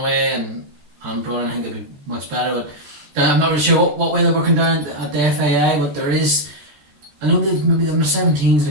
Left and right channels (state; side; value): late; left; 14 ms